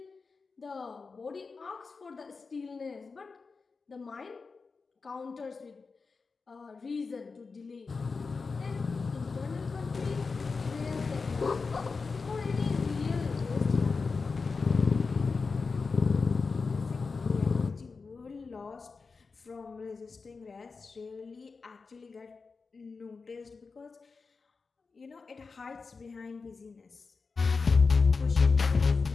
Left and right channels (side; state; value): right; quieter; 4.5 dB